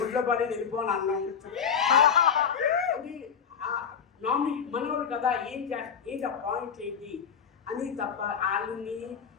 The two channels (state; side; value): quieter; right; 7.2 dB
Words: గుడ్లో పడేది వెళ్ళిపోని అన్నాం. అది మనోడు కదా, ఏంటి ఆ పాయింట్ ఏంటి అని తప్ప వాళ్ళని